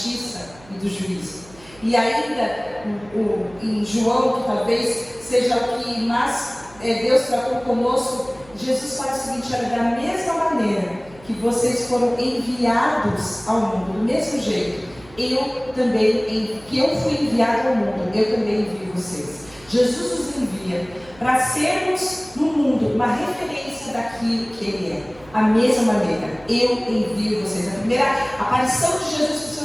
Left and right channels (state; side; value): noise; right; hum, 24 dB below the sound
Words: e do juízo. E ainda em João, que talvez seja o que mais Deus tratou conosco, Jesus fala o seguinte: olha, da mesma maneira que vocês foram enviados ao mundo, do mesmo jeito, que eu fui enviado ao mundo, eu também envio vocês. Jesus nos envia para sermos no mundo uma referência daquilo que Ele é. A mesma maneira, eu envio vocês. A primeira aparição de Jesus para os